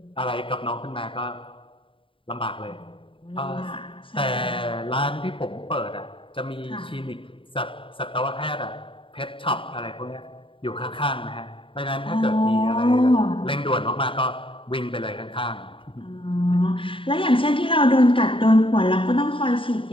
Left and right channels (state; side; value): late; right; 0.25 ms